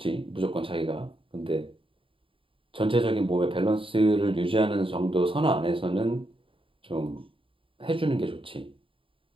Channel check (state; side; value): late; left; 0.25 ms